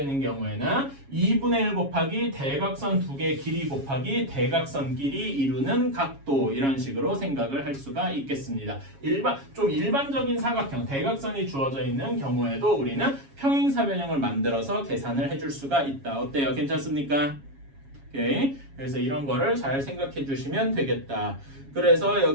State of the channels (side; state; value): left; late; 7.3 ms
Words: 있는 경우에는 2분의 1 곱하기 대각선 두 개 길이 곱하기 대각선 길이 이루는 각도 이런 식으로 생각을 할 수가 있겠습니다. 좀 일반적인 사각형 대각선이 주어져 있는 경우에도 우리는 평행사변형을 만들어서 계산을 해줄 수가 있다. 어때요? 괜찮습니까? 오케이. 그래서 이런 거를 잘 생각해 주시면 되겠다. 그래서